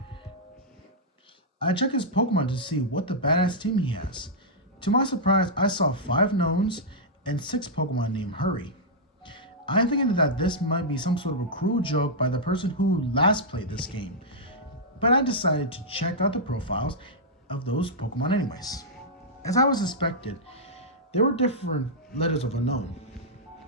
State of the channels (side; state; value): both; normal; correlation -0.08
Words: I checked his Pokemon to see what the badass team he has. To my surprise, I saw 5 knowns and 6 Pokemon named Hurry. I'm thinking that this might be some sort of a cruel joke by the person who last played this game, but I decided to check out the profiles of those Pokemon anyways. As I was expected, there were different letters of unknown,